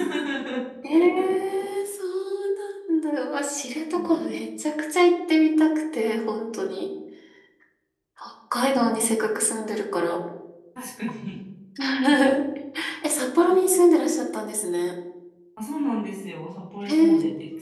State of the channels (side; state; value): both; identical; correlation 1.00